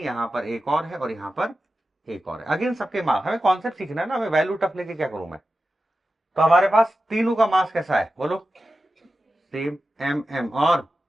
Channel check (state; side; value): normal; both; correlation 0.92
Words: पर एक और है और यहां पर एक और है। अगेन सबके मास, हमें कॉन्सेप्ट सीखना है ना, हमें वैल्यू टफ लेके क्या करूं मैं। तो हमारे पास तीनों का मास कैसा है? बोलो। सेम, m m और